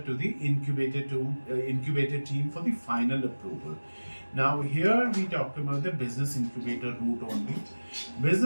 to the incubator team for the final approval. Now here we talk about the business incubator route only.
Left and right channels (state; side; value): inverted; both; correlation -1.00